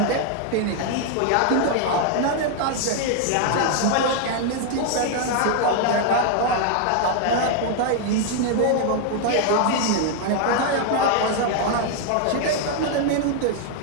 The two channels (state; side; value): different; both; correlation 0.00